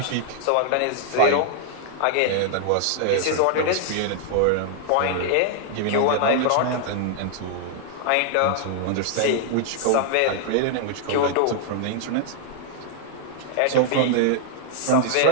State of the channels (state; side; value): different; both; correlation 0.00